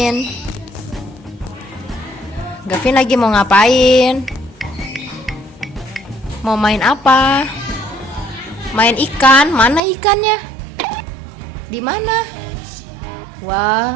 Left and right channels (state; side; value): drops out; left; at 9.8 s